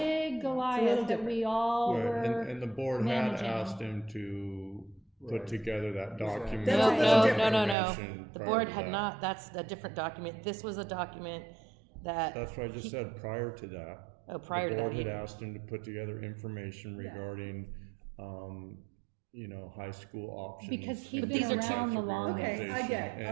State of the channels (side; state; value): left; drops out; at 7.8 s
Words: little Goliath that different. we all Right, were and the board managing. had asked him to put together that document. That's a No, little no, different. no, no, no. information The prior board to had that. not, that's a different document. This was a document that. That's what I just said, prior to that. Prior to The that. board had asked him to put together information regarding, high school options. Because he'd and been different around types the of longest. Okay, I get it,